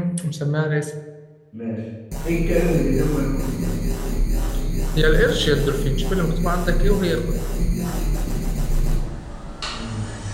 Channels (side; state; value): both; identical; correlation 1.00